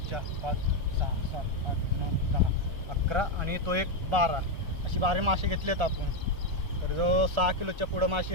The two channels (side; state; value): left; late; 1.4 ms